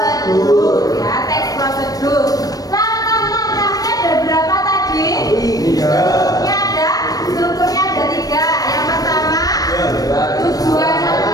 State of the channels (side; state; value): right; late; 0.18 ms